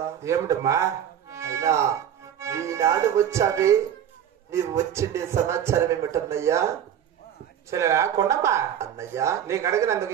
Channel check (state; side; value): quieter; left; 9.6 dB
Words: ఏమిటమ్మా? అయినా ఈనాడు వచ్చావి నీవు వచ్చిండే సమాచారం ఏమిటన్నయ్యా? చెల్లెలా కొండమ్మా అన్నయ్య నీకు అడిగినందుకు